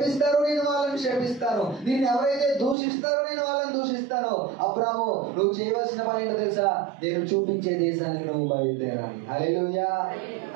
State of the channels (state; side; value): drops out; left; at 2.8 s